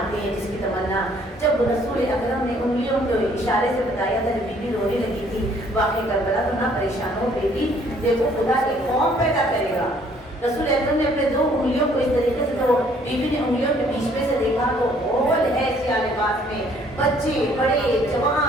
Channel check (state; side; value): normal; both; correlation 0.61